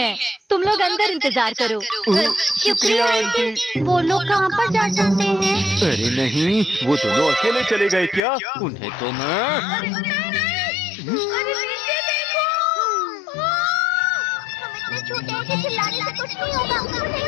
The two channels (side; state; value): right; drops out; at 8.2 s